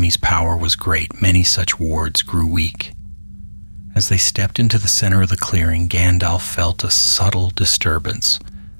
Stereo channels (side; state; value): both; inverted; correlation -1.00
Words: power was great. Many such wards grew weak." As they stepped into the center of the clearing, Gandalf felt a subtle disturbance,